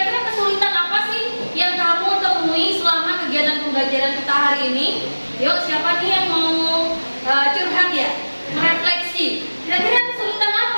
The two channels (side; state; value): both; inverted; correlation -1.00